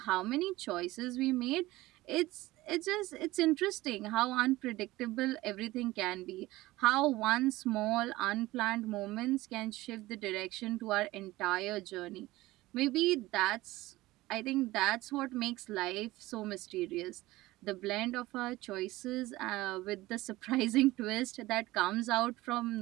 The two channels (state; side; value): quieter; left; 18.4 dB